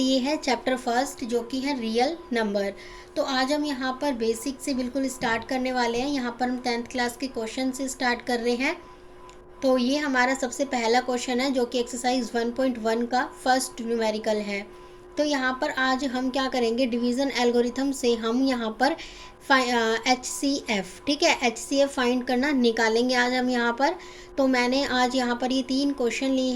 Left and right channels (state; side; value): identical; both; correlation 1.00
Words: है। चैप्टर फर्स्ट जो कि है रियल नंबर। तो आज हम यहाँ पर बेसिक से बिल्कुल स्टार्ट करने वाले हैं। यहाँ पर हम 10th क्लास के क्वेश्चन से स्टार्ट कर रहे हैं। तो ये हमारा सबसे पहला क्वेश्चन है जो कि एक्सरसाइज 1.1 का फर्स्ट न्यूमेरिकल है। तो यहाँ पर आज हम क्या करेंगे, डिवीज़न एल्गोरिथम से हम यहाँ पर HCF, ठीक है, HCF फाइंड करना निकालेंगे आज हम यहाँ पर। तो मैंने आज यहाँ पर ये 3 क्वेश्चन लिए